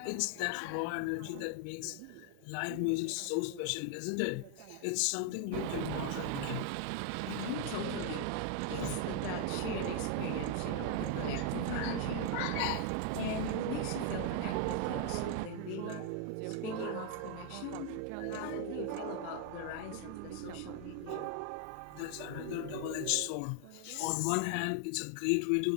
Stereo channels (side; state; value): both; different; correlation 0.00